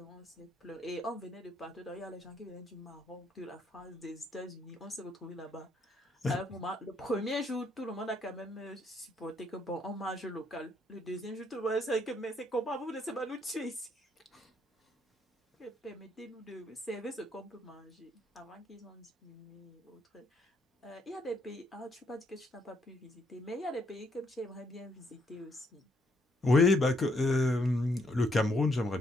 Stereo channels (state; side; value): normal; both; correlation 0.72